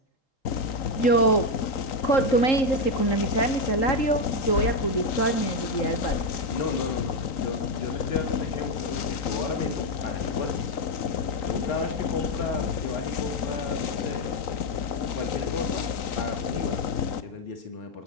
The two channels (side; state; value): right; late; 3.9 ms